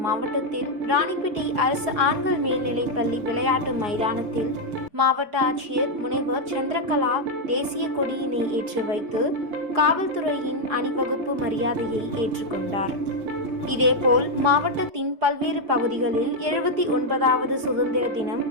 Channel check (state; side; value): late; left; 4.8 ms